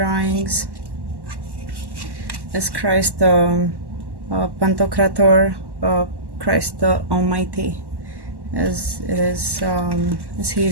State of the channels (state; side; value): late; left; 1.1 ms